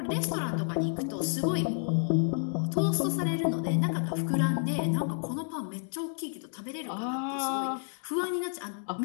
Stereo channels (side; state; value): right; silent; 58 dB below the other